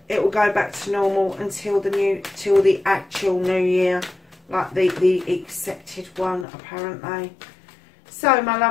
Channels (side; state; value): right; drops out; at 6.5 s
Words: it will go back to normal until the actual new year, like the accepted one apparently. So, my